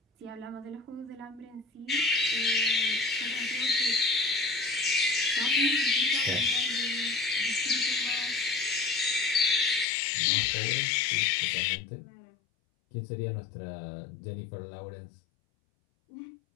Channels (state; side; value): drops out; right; at 9.9 s